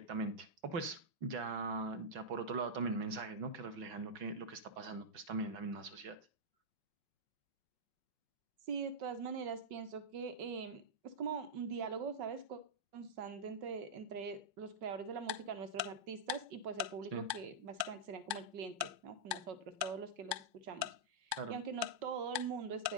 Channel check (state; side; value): late; left; 5.4 ms